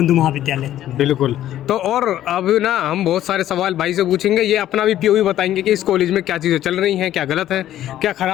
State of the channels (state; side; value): quieter; right; 12.5 dB